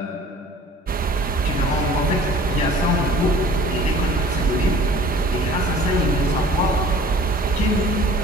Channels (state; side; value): normal; both; correlation 0.49